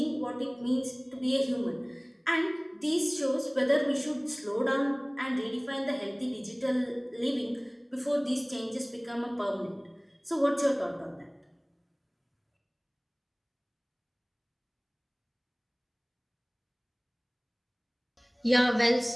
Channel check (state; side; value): identical; both; correlation 1.00